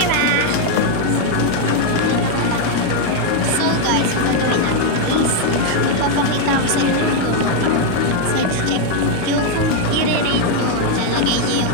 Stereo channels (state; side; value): different; both; correlation 0.01